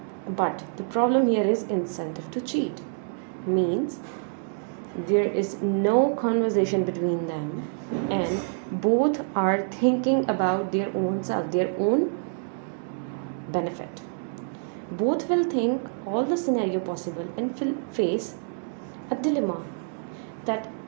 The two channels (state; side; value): silent; left; digital silence